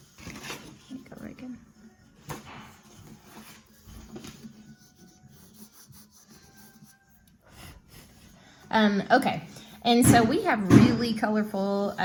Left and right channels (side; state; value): both; identical; correlation 1.00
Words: Okay, and so we have really colorful